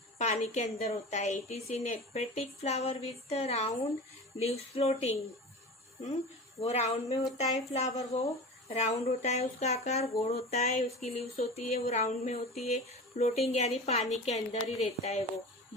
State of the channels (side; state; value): both; normal; correlation 0.32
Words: पानी के अंदर होता है। It is in aquatic flower with round leaves floating. वो राउंड में होता है फ्लावर, वो राउंड होता है उसका आकार, गोल होता है, उसकी लीव्स होती है वो राउंड में होती है। फ्लोटिंग यानी पानी के अंदर ही रहता है वो,